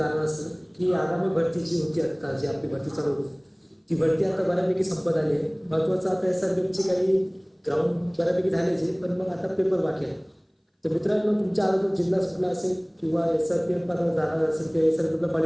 असं की आगामी भरती जी होती, आता जी आपली भरती चालू होती ती भरती आता बऱ्यापैकी संपत आली आहे. महत्त्वाचं आता SRPFची काही ग्राउंड बऱ्यापैकी झाल्याचे, पण मग आता पेपर बाकी आहे. तर मित्रांनो, तुमच्या अगोदर जिल्हा सुटला असेल किंवा SRPF पात्र झाला असेल किंवा SRPFला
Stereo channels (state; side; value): identical; both; correlation 1.00